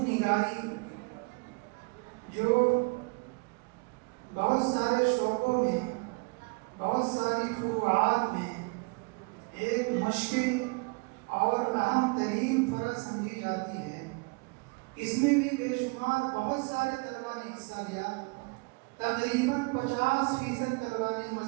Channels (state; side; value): quieter; left; 30.5 dB